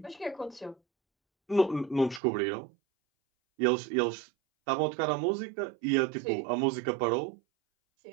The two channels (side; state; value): left; drops out; at 2.2 s